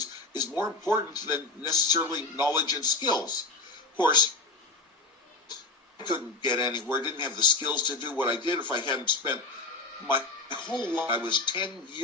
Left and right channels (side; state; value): right; quieter; 3.4 dB